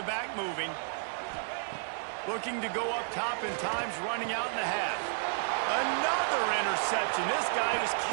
back moving. Looking to go up top, and time's running out in the half. Another interception. This guy just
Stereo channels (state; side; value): silent; left; digital silence